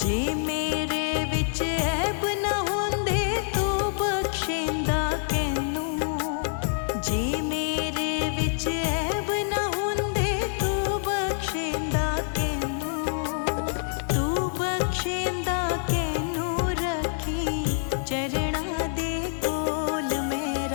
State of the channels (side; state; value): right; silent; digital silence